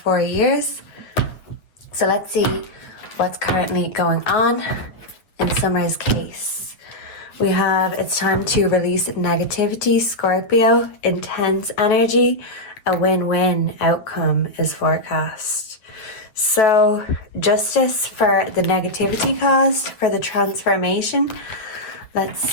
years. So let's see what's currently going on in Summer's case. We have it's time to release negativity, Scorpio, intense energy. A win-win outcome is forecast. So justice for the negativity caused, for the transformation. Let's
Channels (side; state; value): right; late; 9.1 ms